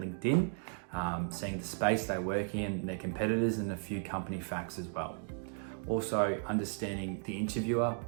seeing the space they work in, their competitors, and a few company facts as well. Also understanding the interviewer,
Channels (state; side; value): silent; left; 54 dB below the other